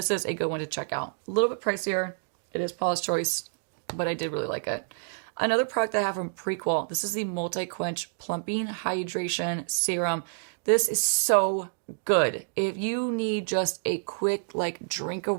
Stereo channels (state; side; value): silent; left; digital silence